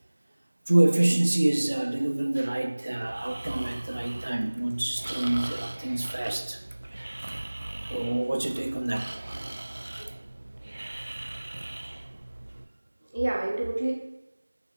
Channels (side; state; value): both; inverted; correlation -1.00